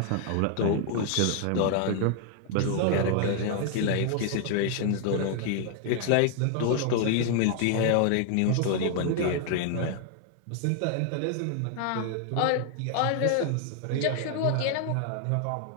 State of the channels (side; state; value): both; different; correlation 0.00